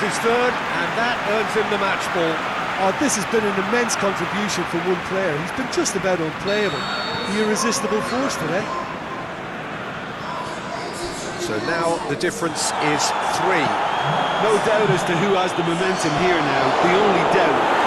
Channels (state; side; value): identical; both; correlation 1.00